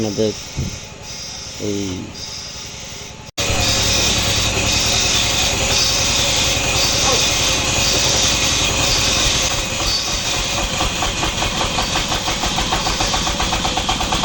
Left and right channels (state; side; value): identical; both; correlation 1.00